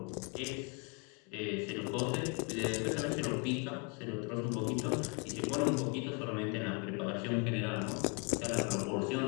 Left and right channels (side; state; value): right; quieter; 34.4 dB